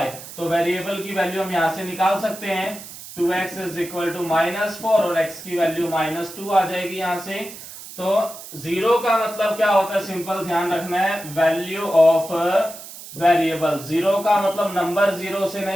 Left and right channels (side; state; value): right; noise; hiss, 14 dB below the sound